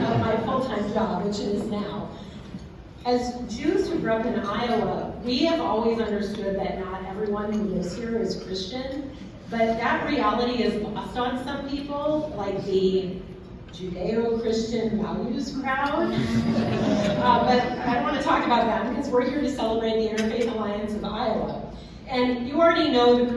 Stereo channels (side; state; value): both; identical; correlation 1.00